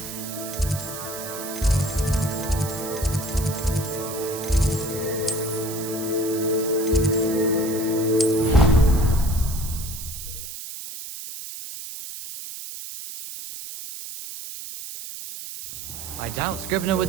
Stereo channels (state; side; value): noise; right; hiss, 9 dB below the sound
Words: I doubt Scribner would